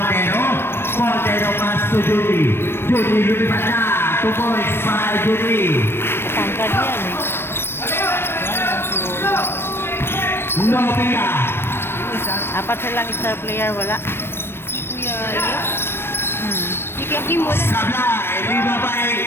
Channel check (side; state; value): right; late; 0.12 ms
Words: Montero, pass to Judy, lumipat na, 2 points para kay Judy. Tangkad yan eh. Nopia. Apat silang star player, wala. Si Kuya Rio. Si Kuya Kim wala. Sablay,